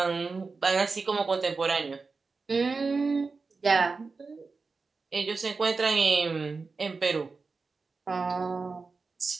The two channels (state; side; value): quieter; left; 4.3 dB